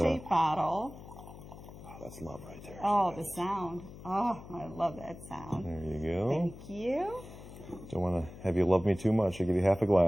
bottle. Oh, that's love right there. Oh, the sound. Oh, I love that sound. There you go. Thank you. Don't want to have you love me too much. I'll give you half a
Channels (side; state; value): left; noise; hum, 15 dB below the sound